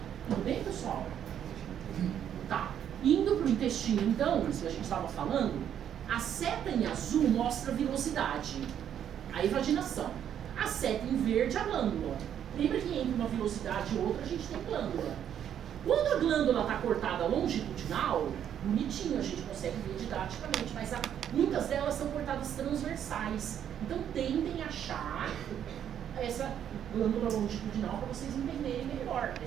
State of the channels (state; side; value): quieter; left; 9.5 dB